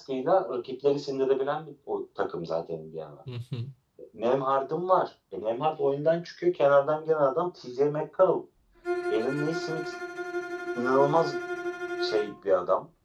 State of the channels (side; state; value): both; identical; correlation 1.00